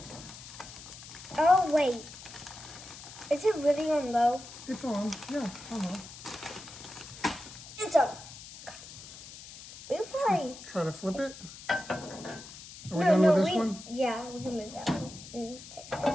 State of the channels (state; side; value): noise; left; hiss, 15 dB below the sound